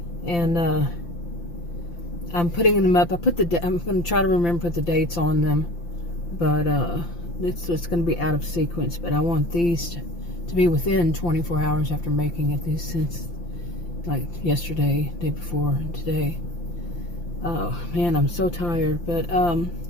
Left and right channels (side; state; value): right; late; 5.8 ms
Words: and I'm putting them up. I'm going to try to remember to put the dates on them, but it's going to be out of sequence. But I want these to be within 24 hours after making it. These since like yesterday, day before, and today. Oh man, I'm so tired. But